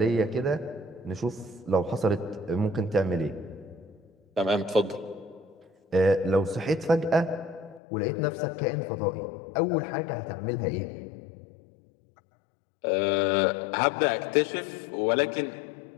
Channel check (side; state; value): right; drops out; at 7.8 s